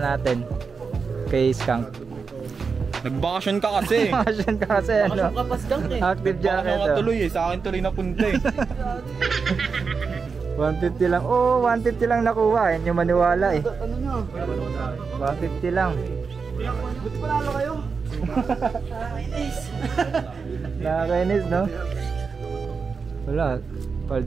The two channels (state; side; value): quieter; left; 5.2 dB